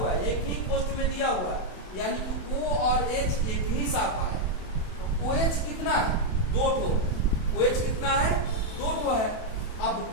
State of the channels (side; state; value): right; late; 27 ms